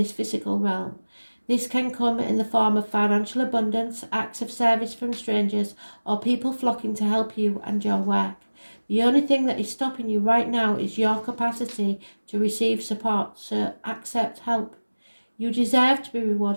physical realm. This can come in the form of financial abundance, acts of service from strangers, or people flocking to help you and your work. The only thing that is stopping you right now is your capacity to receive support, so accept help. You deserve to be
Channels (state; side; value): inverted; both; correlation -1.00